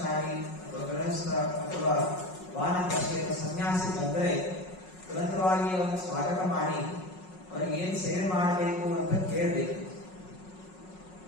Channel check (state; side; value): late; right; 5.4 ms